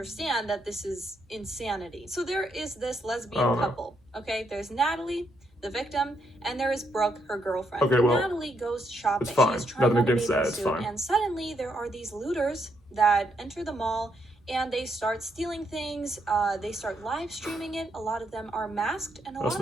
that this is insanity? So there is this lesbian couple, okay? There's Natalie, the victim, and there is Brooke, her girlfriend. Okay, well, Natalie goes shopping. It's fine. She's trying Nothing on a against that. bathing It's suit, fine. and suddenly there are these looters that enter the mall and they start stealing things. They start live streaming it. A lot of them are masked, and a lot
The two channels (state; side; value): normal; both; correlation 0.77